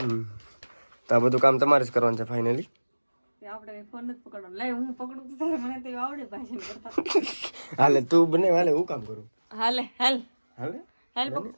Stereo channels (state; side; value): inverted; both; correlation -1.00